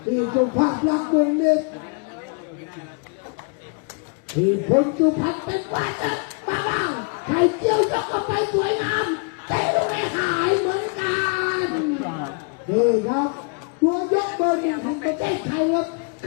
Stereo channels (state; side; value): quieter; right; 35.6 dB